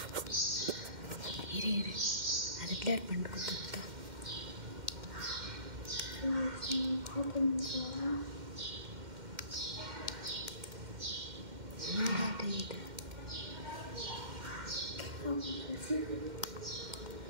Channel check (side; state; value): left; late; 2.1 ms